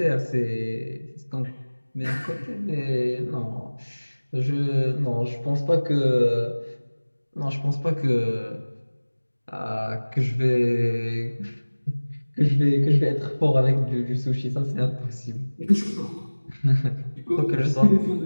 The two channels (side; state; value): both; inverted; correlation -1.00